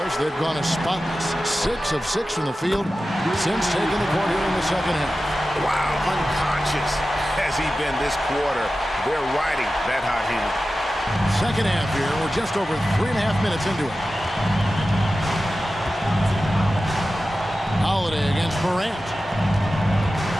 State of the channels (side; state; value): both; normal; correlation 0.94